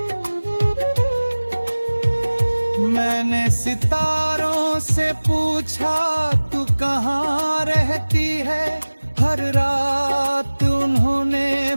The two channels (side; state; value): both; inverted; correlation -1.00